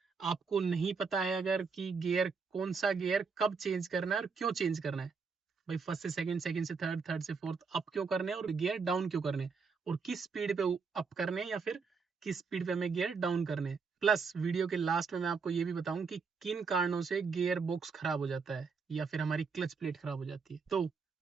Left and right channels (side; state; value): left; quieter; 5.2 dB